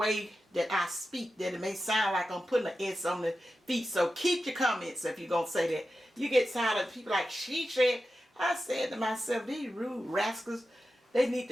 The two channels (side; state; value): both; normal; correlation 0.92